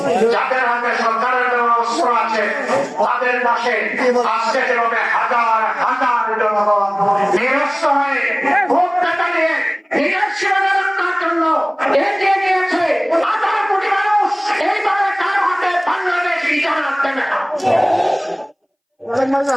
যাদের হাতে সরকারের দেওয়া অস্ত্র আছে, তাদের পাশে আজকে যেভাবে হাজার হাজার জনগণ নিরস্ত হয়ে ভোট টাকা নিয়ে দেশের সীমানা রক্ষার জন্য এগিয়ে গিয়েছে 18 কোটি মানুষ। এইভাবে কারো হাতে বাংলাদেশ ইজারা দেবে না।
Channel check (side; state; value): both; identical; correlation 1.00